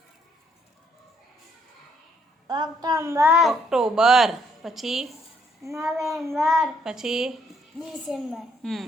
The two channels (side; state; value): both; normal; correlation 0.70